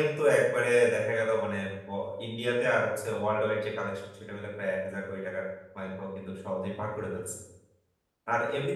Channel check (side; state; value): both; identical; correlation 1.00